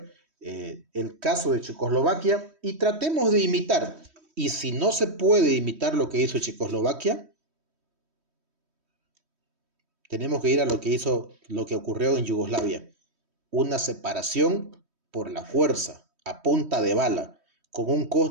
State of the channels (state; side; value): late; left; 3.1 ms